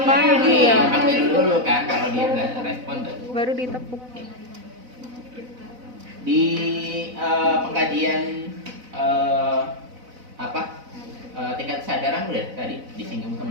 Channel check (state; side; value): late; left; 4.0 ms